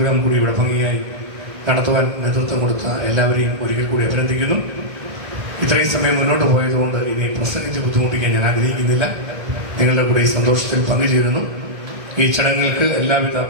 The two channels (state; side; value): late; left; 1.6 ms